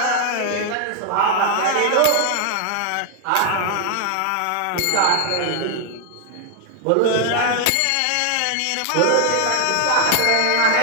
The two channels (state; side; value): different; both; correlation 0.00